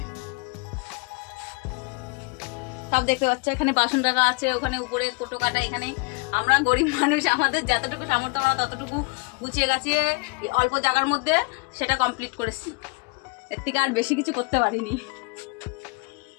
সব দেখতে পাচ্ছ, এখানে বাসন রাখা আছে, ওখানে উপরে কোটো কাটা। এখানে আমরা গরিব মানুষ, আমাদের যতটুকু সামর্থ্য আমরা ততটুকু গুছিয়ে গাছিয়ে অল্প জায়গার মধ্যে সেটা কমপ্লিট করেছি। এর থেকে আর বেশি কিছু করতে পারিনি।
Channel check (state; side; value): quieter; right; 30.5 dB